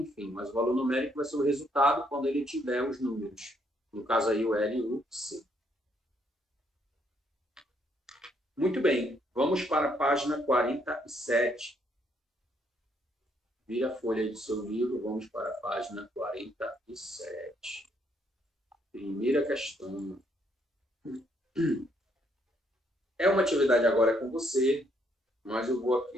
enfim, mas o valor numérico vai ser o resultado quando ele tiver os números. No caso aí, o L e o C. Muito bem, vamos para a página 47. Vira a folha aí do seu livro, vamos para a página 47. Primeira questão. É uma atividade agora com você, mas eu vou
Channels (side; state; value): both; normal; correlation 0.71